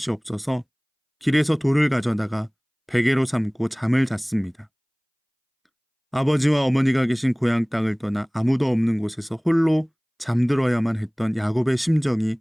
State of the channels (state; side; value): identical; both; correlation 1.00